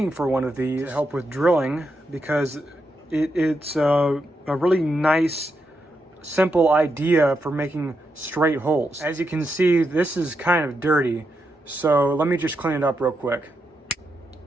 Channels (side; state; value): both; normal; correlation 0.84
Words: for one of these to help with drilling because it's a really nice, simple idea for making straight holes. As you can see, this is kind of dirty, so let me just clean it up real quick.